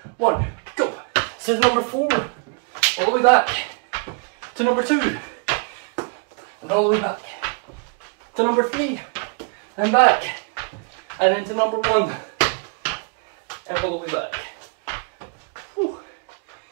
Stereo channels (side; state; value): left; quieter; 35.3 dB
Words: 1, go. So number 4, all the way back. To number 2, and all the way back. to number 3, and back, and then to number 1, and all the way back. Whew.